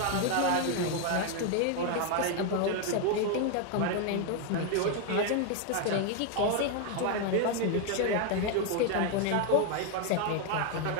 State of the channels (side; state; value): both; different; correlation 0.01